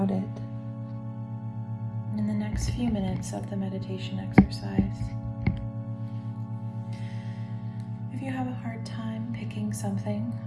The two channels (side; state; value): both; identical; correlation 1.00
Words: it in the next few minutes of the meditation exercise. If you have a hard time picking something,